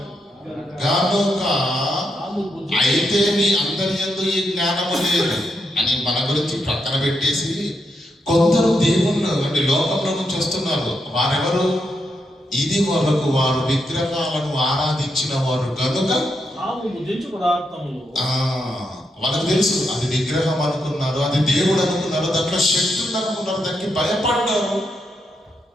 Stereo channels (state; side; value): normal; both; correlation 0.82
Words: కనుక, అయితే నీ అందరి యందు ఈ జ్ఞానము లేదు అని మన గురించి ప్రక్కన పెట్టేసి కొందరు దేవుళ్ళు అంటే లోకంలో నుంచి వస్తున్నారు. వారెవరు? ఇది వరకు వారు విగ్రహాలను ఆరాధించిన వారు కనుక వాళ్ళకు తెలుసు అది విగ్రహం అనుకున్నారు, అది దేవుడు అనుకున్నారు, దాంట్లో శక్తి ఉంది అనుకున్నారు, దానికి భయపడ్డారు,